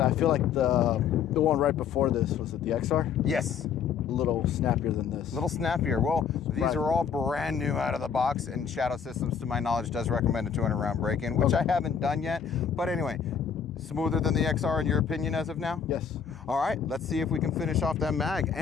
I feel like the one right before this, was it the XR? Yes. A little snappier than this. A little snappier. Well, these are all brand new out of the box, and Shadow Systems, to my knowledge, does recommend a 200 round break-in, which I haven't done yet. But anyway, smoother than the XR in your opinion as of now? Yes. All right, let's see if we can finish off that mag.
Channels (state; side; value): quieter; right; 7.1 dB